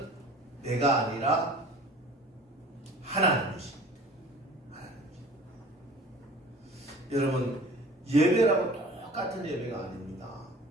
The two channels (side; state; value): both; normal; correlation 0.45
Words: 내가 아니라 하나님이십니다. 여러분, 예배라고 똑같은 예배가 아닙니다.